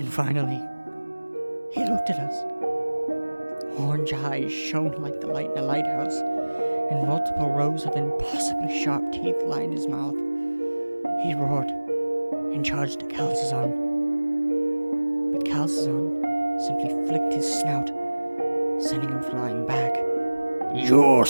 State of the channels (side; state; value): both; inverted; correlation -1.00